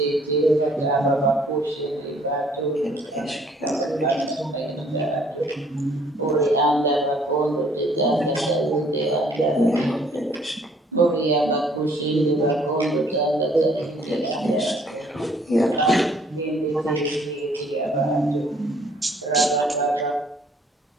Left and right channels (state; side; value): normal; both; correlation 0.61